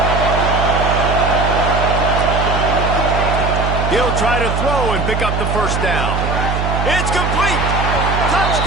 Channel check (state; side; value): noise; right; hum, 1 dB below the sound